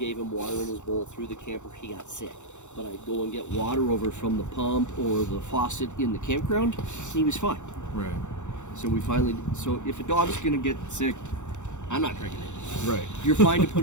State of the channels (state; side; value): late; right; 0.84 ms